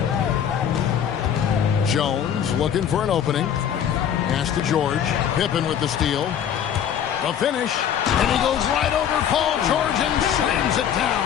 Jones looking for an opening. Pass to George. Pippen with the steal. The finish. And he goes right over Paul George and slams it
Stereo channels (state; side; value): quieter; right; 9.0 dB